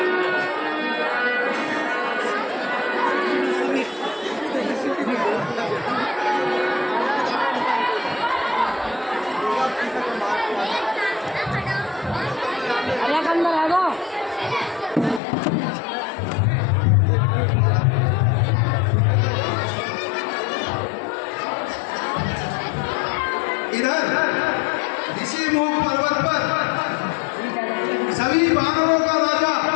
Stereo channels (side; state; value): right; drops out; at 15.2 s